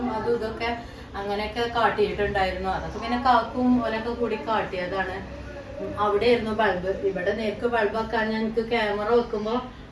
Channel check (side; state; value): both; identical; correlation 1.00